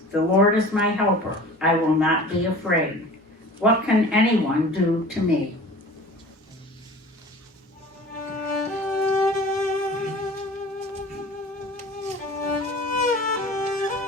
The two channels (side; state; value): both; normal; correlation 0.41